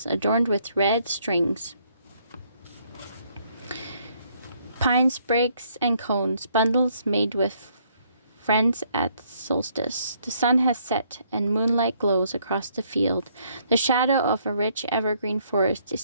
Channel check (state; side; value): inverted; both; correlation -0.68